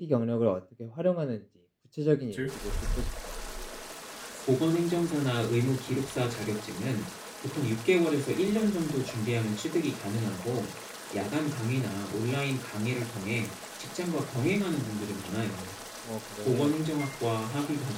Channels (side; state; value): both; identical; correlation 1.00